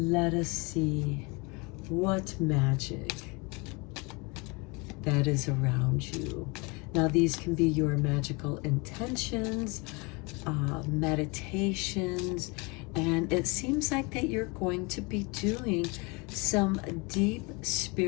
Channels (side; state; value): right; quieter; 28.5 dB